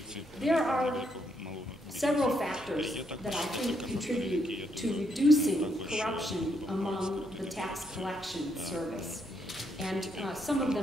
There are several factors that I think contribute to reducing corruption among the tax collection service. And some of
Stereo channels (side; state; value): both; normal; correlation 0.76